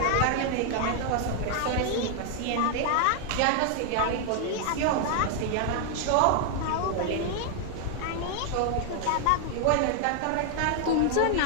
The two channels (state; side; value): different; both; correlation 0.00